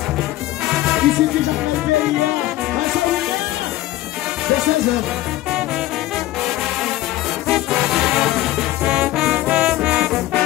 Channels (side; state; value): right; quieter; 15.9 dB